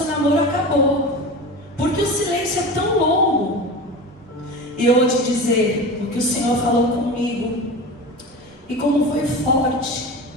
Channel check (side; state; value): right; noise; rumble, 30 dB below the sound